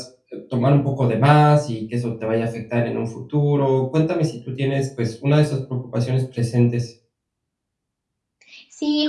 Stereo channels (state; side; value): identical; both; correlation 1.00